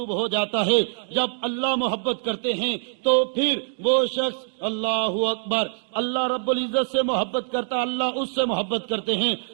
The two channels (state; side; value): silent; left; digital silence